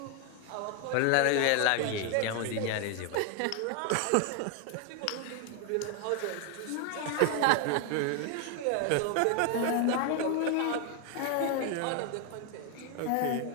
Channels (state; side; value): different; both; correlation 0.01